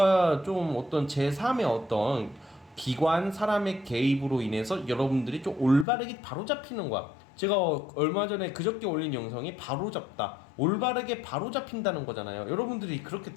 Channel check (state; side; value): drops out; right; at 5.9 s